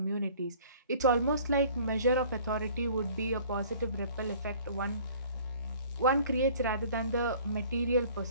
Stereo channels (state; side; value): inverted; both; correlation -0.51